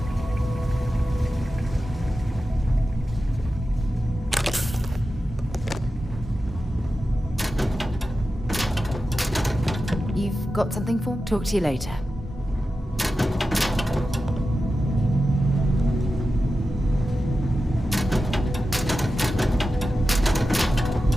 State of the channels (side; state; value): both; normal; correlation 0.92